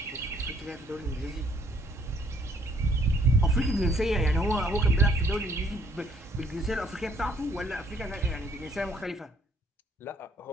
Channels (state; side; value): normal; both; correlation 0.65